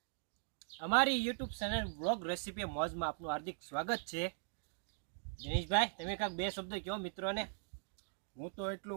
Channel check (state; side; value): silent; left; digital silence